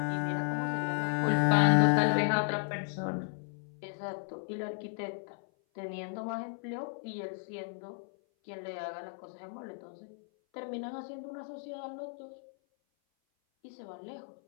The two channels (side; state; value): right; silent; 55 dB below the other